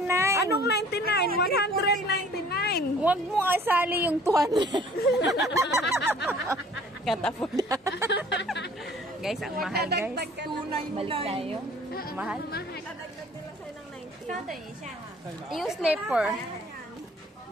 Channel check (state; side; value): normal; both; correlation 0.52